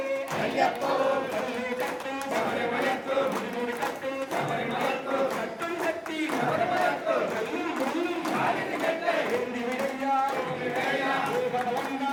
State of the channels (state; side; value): identical; both; correlation 1.00